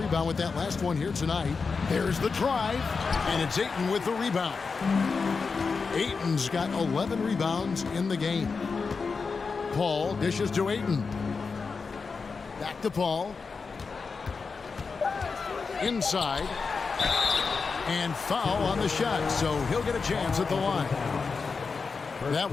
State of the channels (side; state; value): right; quieter; 4.8 dB